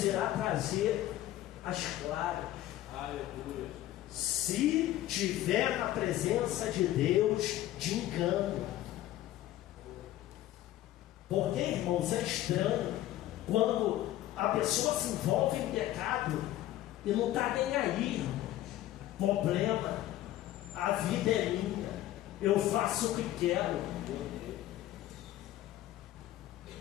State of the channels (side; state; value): right; quieter; 14.2 dB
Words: irá trazer as claras. Aleluia. Se tiver na presença de Deus de engano. Porque, irmãos, é estranho quando a pessoa se envolve em pecado e não está nem aí, irmãos. Problema, a vida é minha, eu faço o que quero.